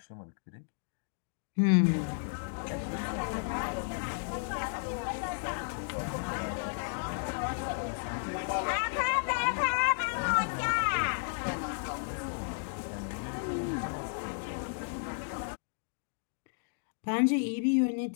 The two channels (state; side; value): silent; right; digital silence